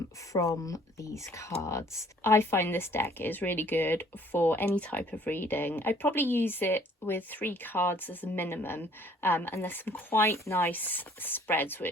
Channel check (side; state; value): both; normal; correlation 0.58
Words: from these cards. I find this deck is really good for any type of reading. I'd probably use it with 3 cards as a minimum, and there's some quite nice spreads